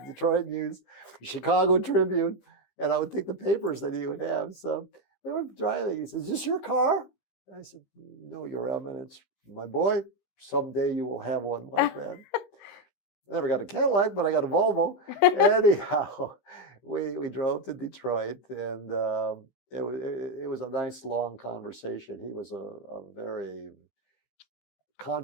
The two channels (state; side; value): late; right; 15 ms